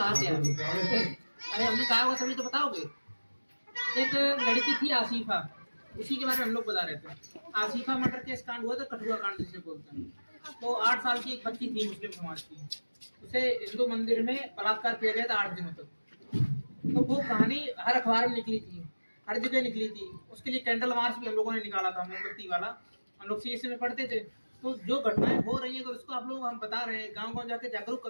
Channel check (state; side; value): inverted; both; correlation -1.00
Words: क्या। अरे हमने कहा होगा तभी तो बताओगे। एक लड़की थी आसिफा, उसी के बारे में हम लोग बता रहे थे। आसिफा मर्डर केस कांड हुआ था, कठुआ कांड जिसे बोलते हैं। तो 8 साल की एक बच्ची थी मुस्लिम समाज की, उसे हिंदू मंदिर में बलात्कार किया गया था 8 दिनों तक। तो वो कहानी हर अखबार में निकली थी, हर जगह निकली थी। उसके लिए कैंडल मार्च भी हम लोगों ने निकाला था, मोमबत्ती वाला। हम लोग CSE में पढ़ते थे। तो जो घटनाएं हो रही है अगर उसको आप लोग हम बता रहे हैं, गांव गांव जाके जागरूक